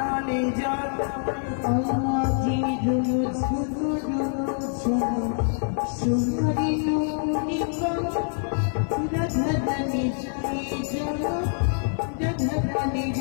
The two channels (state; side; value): silent; right; 61 dB below the other